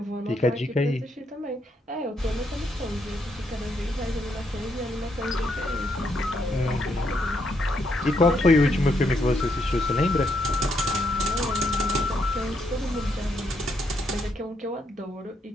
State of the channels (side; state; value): both; normal; correlation 0.76